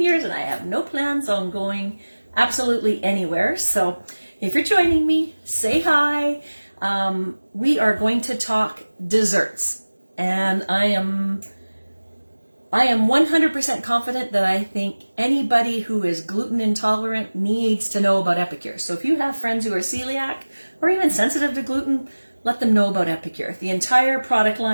years and I have no plans on going absolutely anywhere. So if you're joining me, say hi. We are going to talk desserts, and I am 100% confident that I think anybody who is gluten intolerant needs to know about Epicure. So if you have friends who are celiac or even sensitive to gluten, let them know about Epicure. The entire product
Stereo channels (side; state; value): both; inverted; correlation -1.00